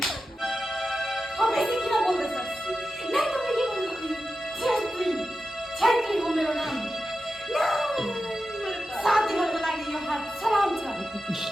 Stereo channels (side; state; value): both; normal; correlation 0.91